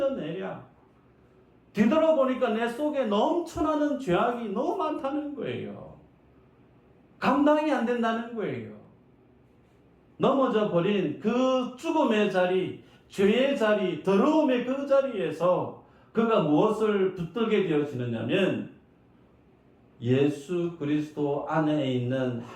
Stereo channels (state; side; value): identical; both; correlation 1.00